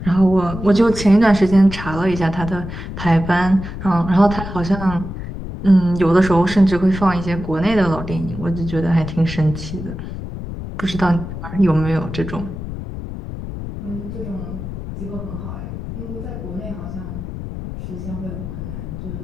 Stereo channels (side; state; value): left; noise; rumble, 8 dB below the sound